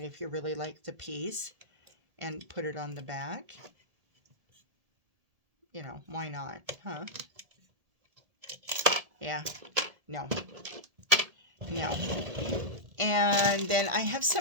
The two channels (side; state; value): left; late; 1.7 ms